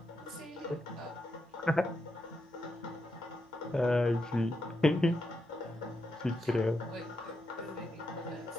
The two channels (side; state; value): both; normal; correlation 0.84